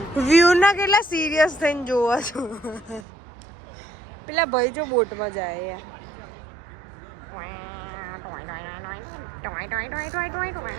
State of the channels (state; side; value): drops out; left; at 3.1 s